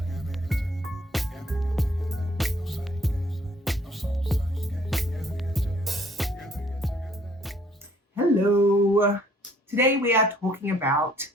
Hello. Today we are talking about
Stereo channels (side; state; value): both; normal; correlation 0.61